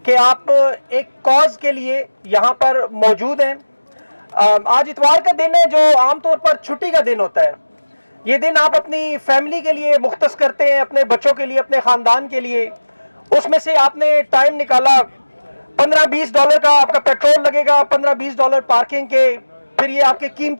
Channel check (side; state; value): both; inverted; correlation -1.00